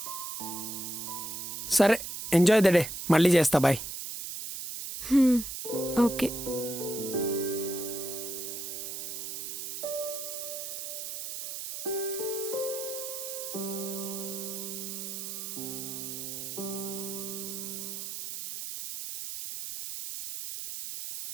సరే, ఎంజాయ్ ద డే. మళ్ళీ చేస్తా. బాయ్. ఓకే.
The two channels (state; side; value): noise; right; hiss, 6 dB below the sound